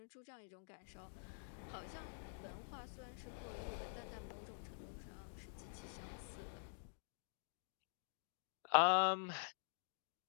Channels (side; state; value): right; silent; digital silence